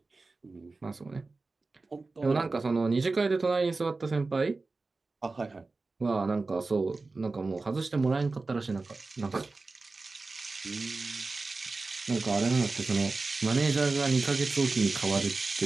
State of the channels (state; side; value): quieter; left; 3.7 dB